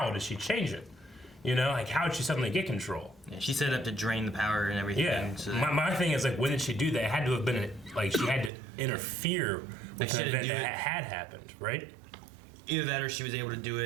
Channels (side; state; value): left; drops out; at 8.5 s